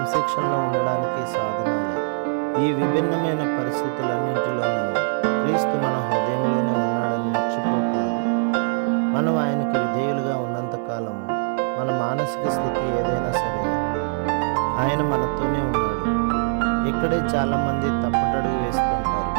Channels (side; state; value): left; silent; 61 dB below the other